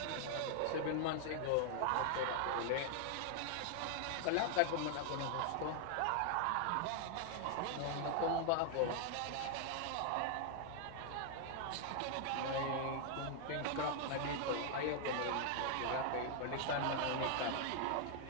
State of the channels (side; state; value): both; different; correlation 0.00